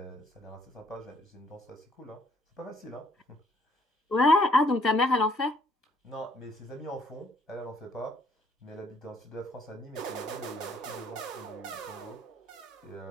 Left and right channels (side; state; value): both; normal; correlation 0.64